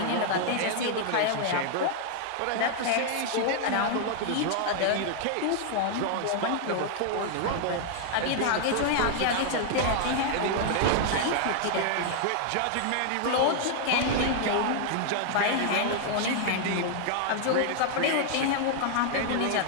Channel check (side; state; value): both; different; correlation 0.00